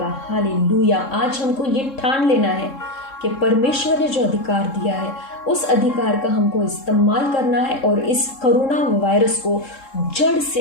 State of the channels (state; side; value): late; right; 3.7 ms